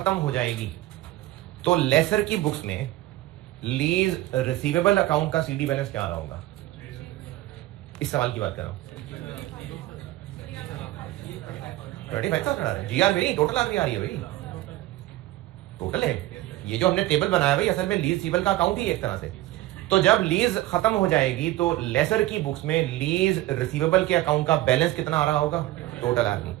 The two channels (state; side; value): quieter; left; 16.3 dB